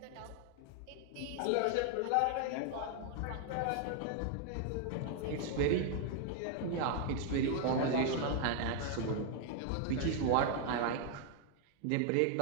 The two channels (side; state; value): both; different; correlation 0.00